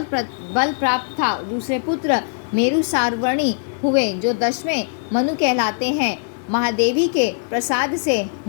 प्राप्त था। दूसरे पुत्र मेरु सार्वणी हुए जो 10वें मनु कहलाते हैं। महादेवी के प्रसाद से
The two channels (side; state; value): right; silent; digital silence